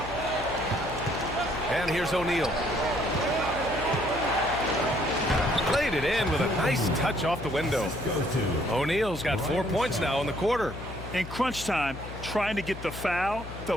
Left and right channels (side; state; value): left; noise; hum, 11 dB below the sound